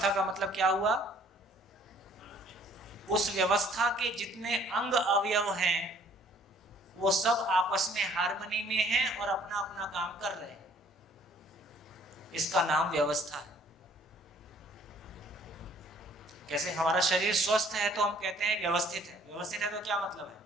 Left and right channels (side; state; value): both; normal; correlation 0.58